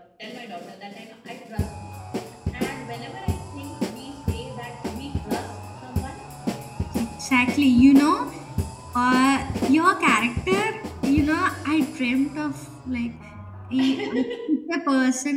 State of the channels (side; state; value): both; identical; correlation 1.00